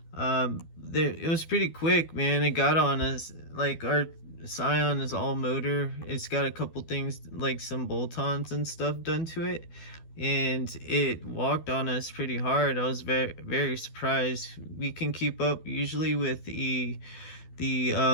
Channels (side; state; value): right; late; 12 ms